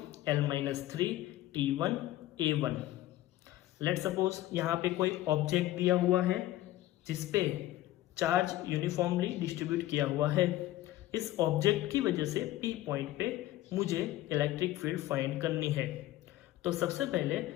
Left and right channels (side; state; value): right; quieter; 15.3 dB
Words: l minus 3 t1 a1. Let suppose यहाँ पे कोई object दिया हुआ है जिसपे charge uniformly distribute किया हुआ है. इस ऑब्जेक्ट की वजह से P पॉइंट पे मुझे इलेक्ट्रिक फील्ड फाइंड करनी है. तो सबसे पहले